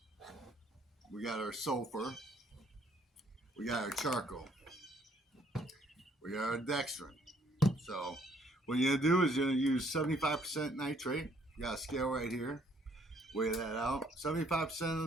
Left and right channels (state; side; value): normal; both; correlation 0.65